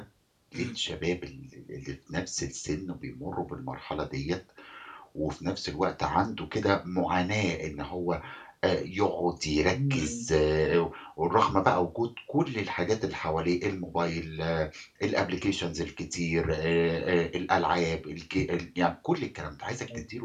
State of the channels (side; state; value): both; identical; correlation 1.00